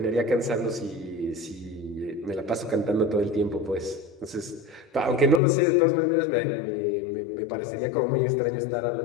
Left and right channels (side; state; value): right; drops out; at 5.4 s